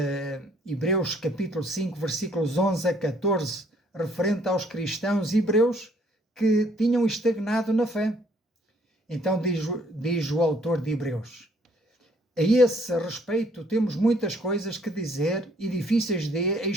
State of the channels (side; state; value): both; normal; correlation 0.63